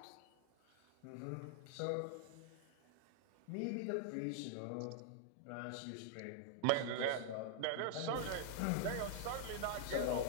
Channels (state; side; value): different; both; correlation -0.01